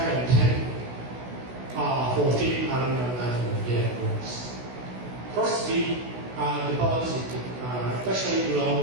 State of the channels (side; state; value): left; late; 16 ms